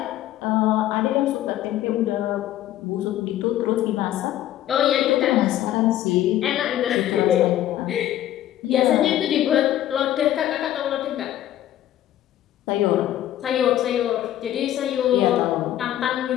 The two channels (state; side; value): quieter; right; 12.8 dB